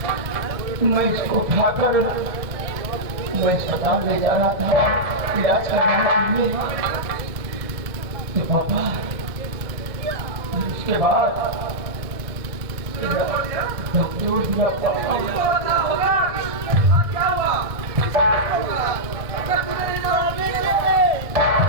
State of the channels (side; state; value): left; late; 1.6 ms